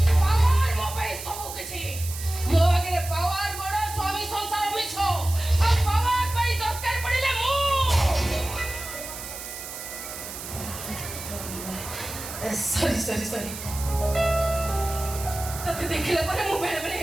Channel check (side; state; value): right; noise; hiss, 10 dB below the sound